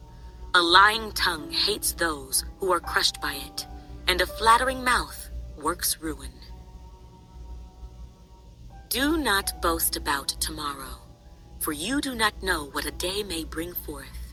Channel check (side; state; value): both; identical; correlation 1.00